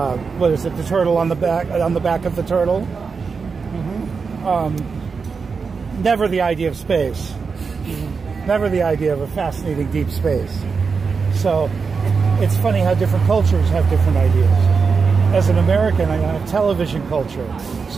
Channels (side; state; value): left; quieter; 5.2 dB